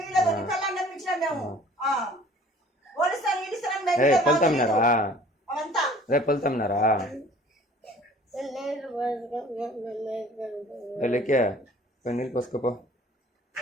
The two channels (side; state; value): both; normal; correlation 0.50